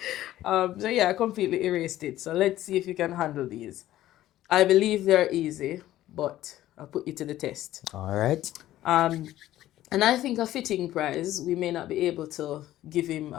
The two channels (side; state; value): right; quieter; 14.1 dB